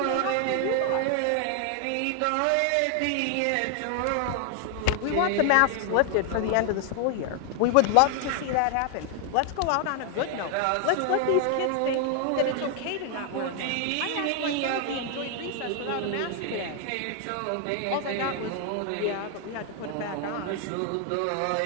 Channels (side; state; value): both; different; correlation 0.00